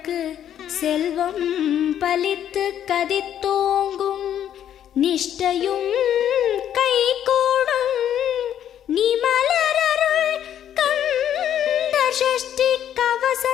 செல்வம் பலித்து கதித்தோங்கும், நிஷ்டையும் கைகூடும் நீ மலரருள் கந்த சஷ்டி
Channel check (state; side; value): quieter; right; 10.2 dB